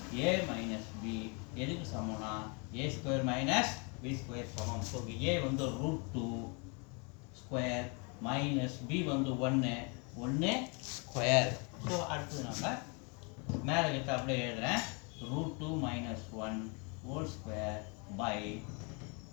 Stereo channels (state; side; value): quieter; right; 33.2 dB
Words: a minus b எதுக்கு சமம்னா a square minus b square சமம். So a வந்து root 2 square minus b வந்து 1 square. So அடுத்து நம்ம மேலே கிட்ட அப்படியே எழுதுறேன் root 2 minus 1 whole square by